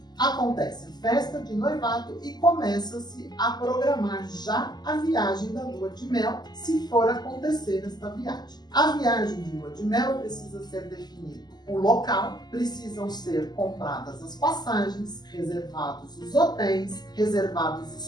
acontece a festa de noivado e começa-se a programar já a viagem da lua de mel, se for acontecer esta viagem. A viagem de lua de mel precisa ser definido o local, precisam ser compradas as passagens, reservados os hotéis, reservados os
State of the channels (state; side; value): late; right; 0.20 ms